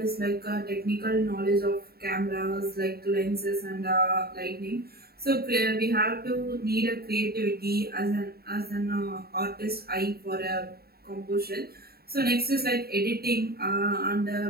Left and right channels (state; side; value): late; left; 0.45 ms